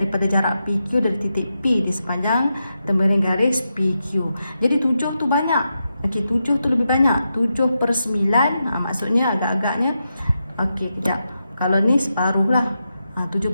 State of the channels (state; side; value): inverted; both; correlation -0.87